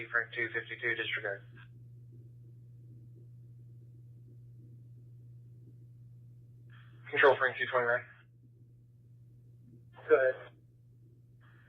Frank 252, disregard. Control Frank 229. Go ahead.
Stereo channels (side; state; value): both; identical; correlation 1.00